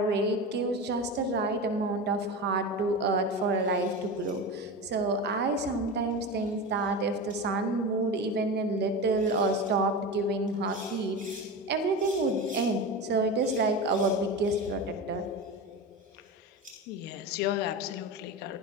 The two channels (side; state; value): both; normal; correlation 0.25